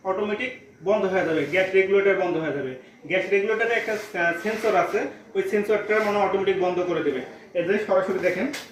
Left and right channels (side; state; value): both; identical; correlation 1.00